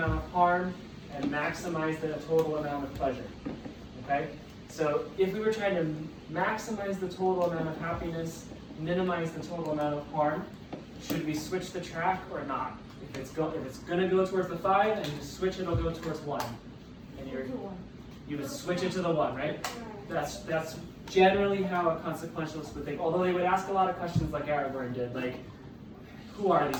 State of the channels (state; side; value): identical; both; correlation 1.00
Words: of harm and maximize the total amount of pleasure. Okay? So if we were trying to maximize the total amount of happiness, minimize the total amount of harm, should we switch the track or not? If it's going to go towards the 5 and you switch, it'll go towards 1. And you would switch it to the 1, right? That's generally how a consequentialist would think. Although they would ask a lot of questions like Aragorn did, like, who are